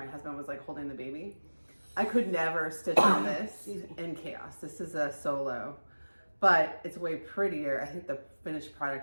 husband was like holding the baby. I could never stitch on this in chaos. This is a solo but it's way prettier. I think the finished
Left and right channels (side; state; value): both; inverted; correlation -1.00